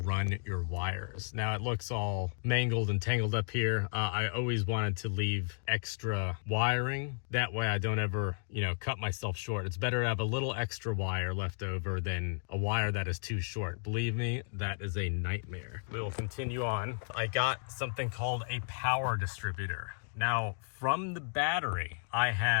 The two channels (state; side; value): silent; right; digital silence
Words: your wires. Now it looks all mangled and tangled up here. I always wanted to leave extra wiring. That way I don't ever, you know, cut myself short. It's better to have a little extra wire left over than a wire that is too short. Believe me, that is a nightmare. We will continue on. I got something called a power distributor. Now, from the battery, I